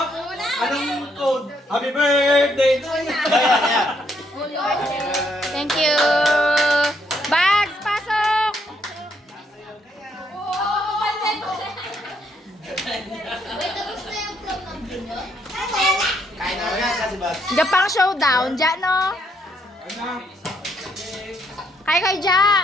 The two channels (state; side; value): normal; both; correlation 0.73